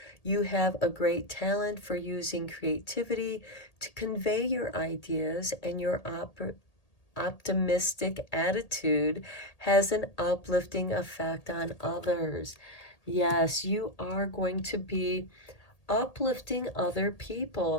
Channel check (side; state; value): right; late; 1.8 ms